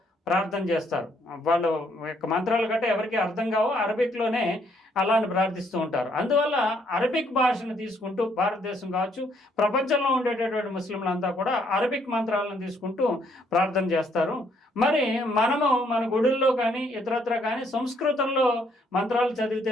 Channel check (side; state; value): both; normal; correlation 0.69